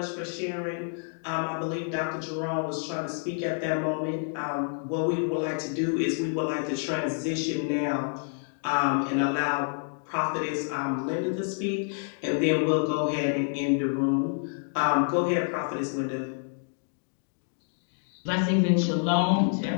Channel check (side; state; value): right; silent; 59 dB below the other